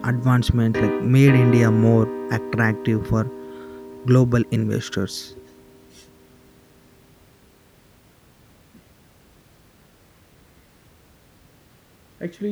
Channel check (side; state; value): both; identical; correlation 1.00